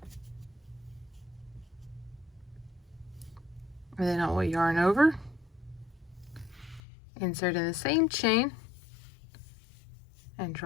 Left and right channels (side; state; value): right; drops out; at 6.8 s